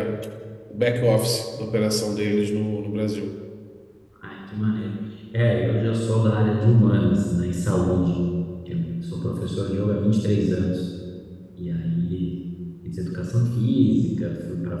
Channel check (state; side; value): identical; both; correlation 1.00